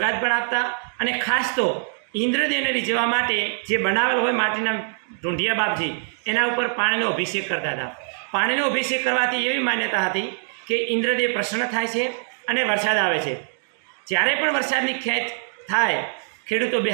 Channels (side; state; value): left; silent; digital silence